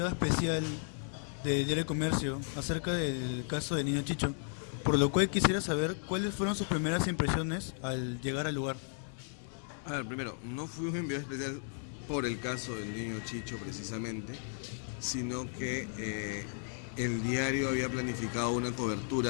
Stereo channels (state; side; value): silent; right; 55 dB below the other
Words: especial del Diario del Comercio acerca del caso del niño Chicho, por lo cual quisiera saber cuáles fueron sus primeras impresiones al llegar al lugar. A ver, primero, no fui un enviado especial por el caso del niño Chicho precisamente, sino que el diario había planificado una